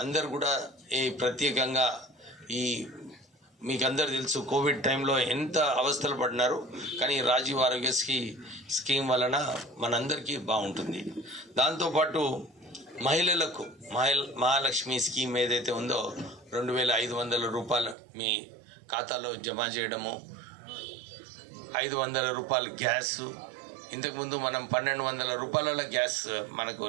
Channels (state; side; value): drops out; left; at 17.9 s